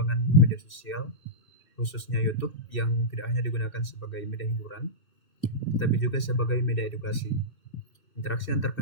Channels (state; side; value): late; right; 2.6 ms